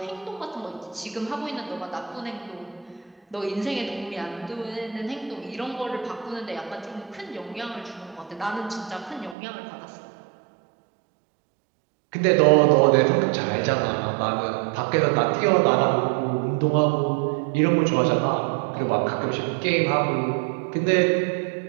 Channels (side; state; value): left; drops out; at 9.3 s